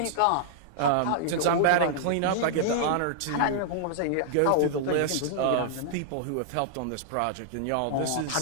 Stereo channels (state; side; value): different; both; correlation -0.01